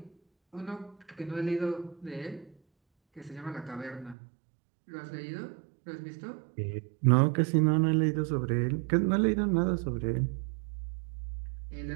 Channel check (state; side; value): drops out; left; at 4.2 s